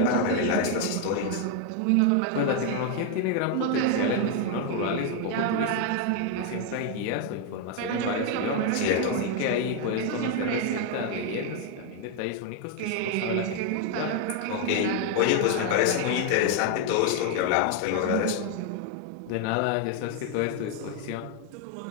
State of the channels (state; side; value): different; both; correlation 0.01